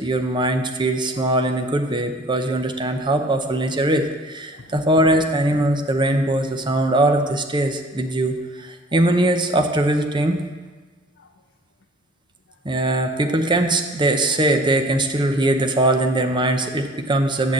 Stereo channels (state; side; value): normal; both; correlation 0.49